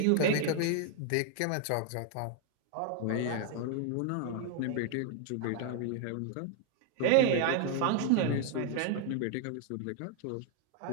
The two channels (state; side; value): different; both; correlation 0.00